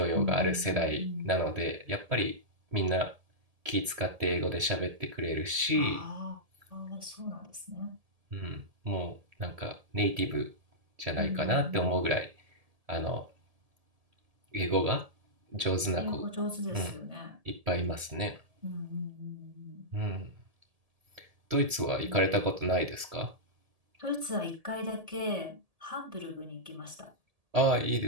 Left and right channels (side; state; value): left; late; 1.7 ms